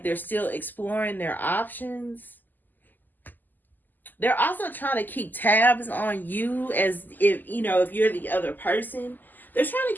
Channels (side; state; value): right; late; 0.087 ms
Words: they're still exploring their options. They're also trying to keep tabs on you, as if you're the other person. They're trying